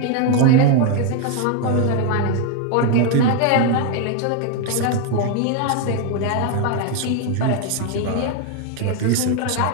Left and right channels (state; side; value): different; both; correlation 0.01